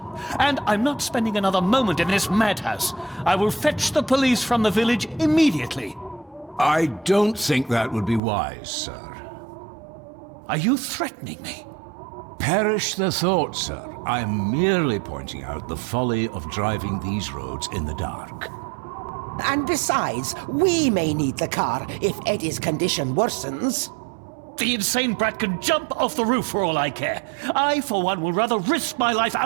And I'm not spending another moment in this madhouse. I will fetch the police from the village immediately. I don't think that would be wise, sir. Are you threatening me? Perish the thought, sir. I'm merely pointing out the folly of driving these roads in the dark. And besides, we may need the car if Eddie's condition worsens. The insane brat can jump off the roof for all I care. I, for one, will rather risk my life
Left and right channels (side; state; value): left; drops out; at 8.2 s